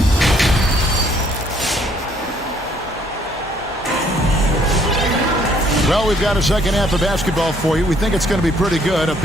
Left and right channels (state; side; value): normal; both; correlation 0.64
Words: Well, we've got a second half of basketball for you. We think it's going to be pretty good. A